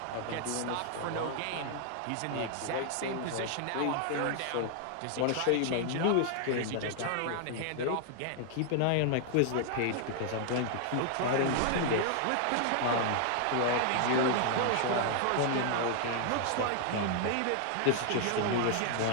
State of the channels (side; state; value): both; different; correlation 0.00